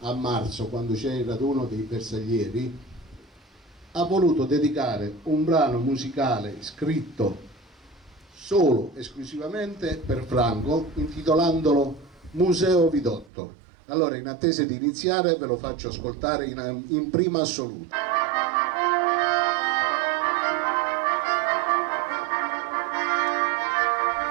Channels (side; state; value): left; drops out; at 13.3 s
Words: a marzo, quando c'è il raduno dei bersaglieri, ha voluto dedicare un brano musicale scritto solo, esclusivamente per Franco, intitolandolo Museo Vidotto. Allora, in attesa di iniziare, ve lo faccio ascoltare in prima assoluta.